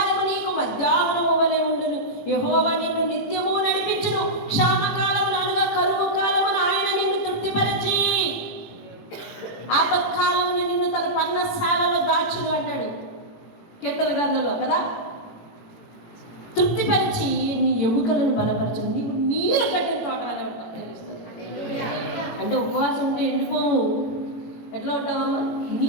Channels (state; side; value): late; right; 18 ms